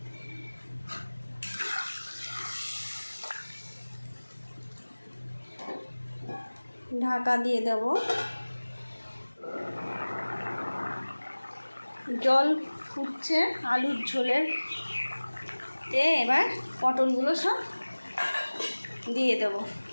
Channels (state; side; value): inverted; both; correlation -1.00